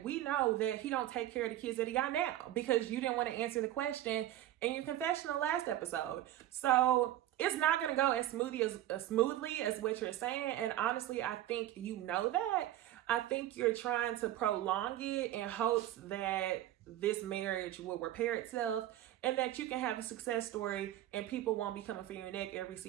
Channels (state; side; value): quieter; left; 13.6 dB